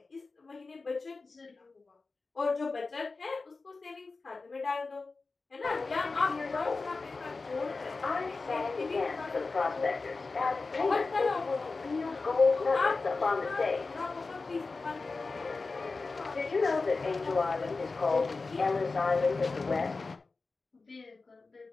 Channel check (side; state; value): right; quieter; 3.9 dB